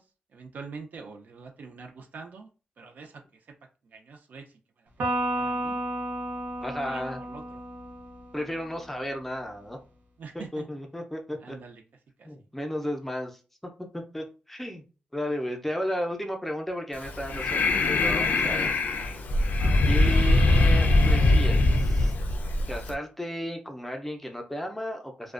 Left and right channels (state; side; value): normal; both; correlation 0.83